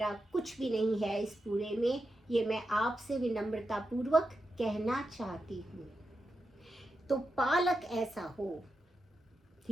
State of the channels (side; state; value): both; normal; correlation 0.88